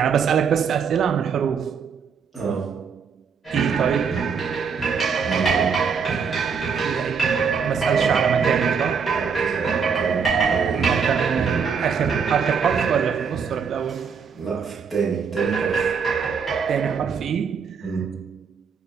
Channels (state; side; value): quieter; left; 6.1 dB